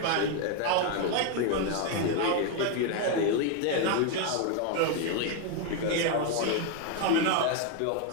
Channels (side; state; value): both; different; correlation 0.01